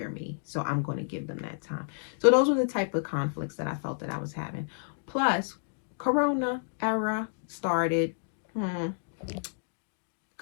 me. So I'm going to give them that time. So those were the type of conflicts that I felt that I was having. Plus, Corona era started.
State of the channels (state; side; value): silent; right; digital silence